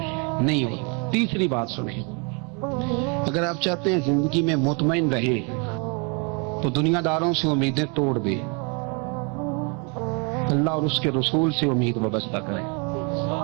نہیں ہوتا۔ تیسری بات سنیں، اگر آپ چاہتے ہیں زندگی میں مطمئن رہیں تو دنیا داروں سے امیدیں توڑ دیں، اللہ اور اس کے رسول سے امید وابستہ کریں،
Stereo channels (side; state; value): left; quieter; 34.1 dB